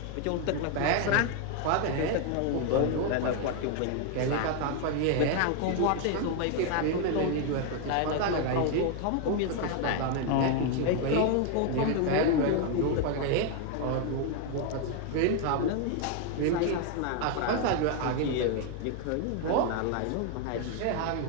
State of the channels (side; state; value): both; different; correlation 0.01